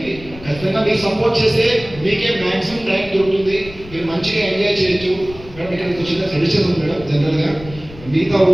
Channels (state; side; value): noise; left; rumble, 17 dB below the sound